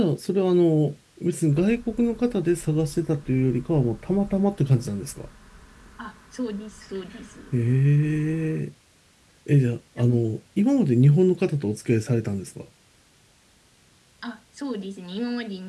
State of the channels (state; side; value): identical; both; correlation 1.00